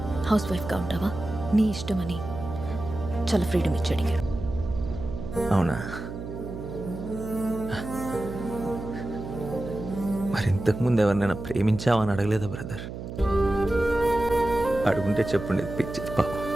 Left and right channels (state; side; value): noise; right; hum, 9 dB below the sound